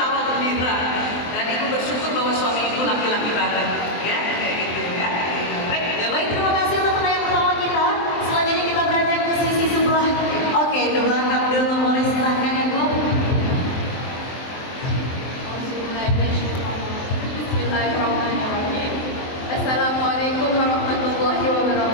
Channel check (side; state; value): right; late; 23 ms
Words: gembira. Dan Ibu bersyukur bahwa suami Ibu laki-laki banget. Ya, kayak gitu ya. Baik. Ya baik, terima kasih untuk pertanyaan pertama kita. Selanjutnya kita beranjak ke sisi sebelah. Oke, di belakang dulu boleh silahkan Ibu. Bismillahirrahmanirrahim. Assalamualaikum warahmatullahi